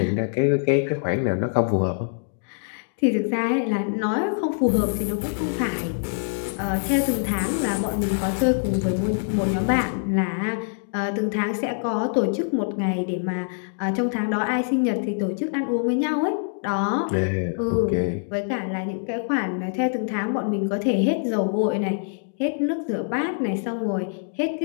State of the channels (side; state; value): right; silent; digital silence